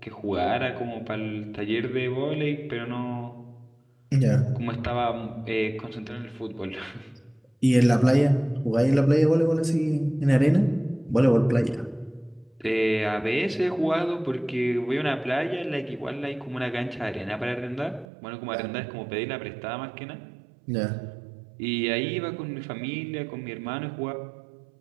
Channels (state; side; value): drops out; left; at 18.1 s